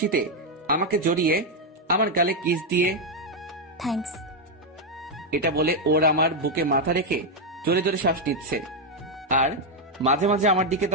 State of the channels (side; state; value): both; normal; correlation 0.02